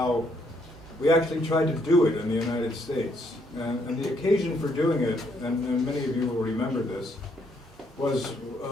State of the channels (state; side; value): normal; both; correlation 0.71